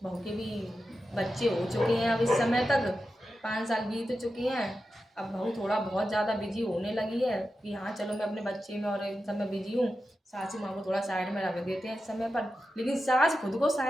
बहू के भी बच्चे हो चुके हैं, अब इस समय तक 5 साल बीत चुके हैं। अब बहू थोड़ा बहुत ज़्यादा बिजी होने लगी है कि हाँ चलो मैं अपने बच्चे में और इन सब में बिजी हूँ, सासू माँ को थोड़ा साइड में रख देते हैं इस समय पर। लेकिन सास खुद को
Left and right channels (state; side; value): normal; both; correlation 0.91